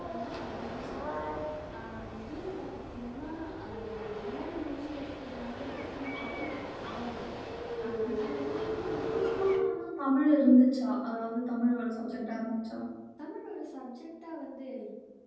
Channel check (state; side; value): identical; both; correlation 1.00